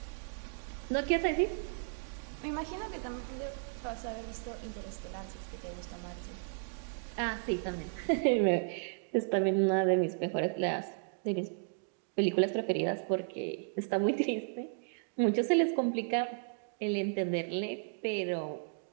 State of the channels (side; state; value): left; silent; digital silence